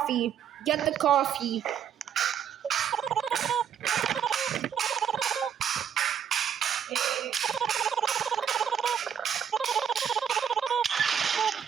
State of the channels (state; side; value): quieter; left; 8.5 dB